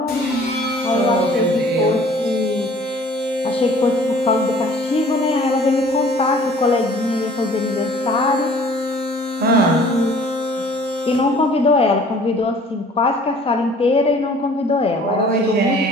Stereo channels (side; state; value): both; normal; correlation 0.52